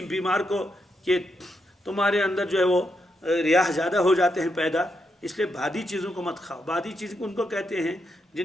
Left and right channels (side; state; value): both; normal; correlation 0.82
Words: بیمار کو کہ تمہارے اندر جو ہے وہ ریاح زیادہ ہو جاتے ہیں پیدا، اس لیے بادی چیزوں کو مت کھاؤ۔ بادی چیز ان کو کہتے ہیں